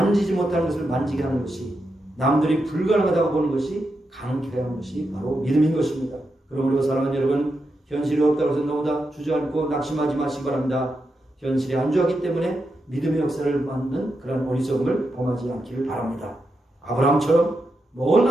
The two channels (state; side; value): normal; both; correlation 0.86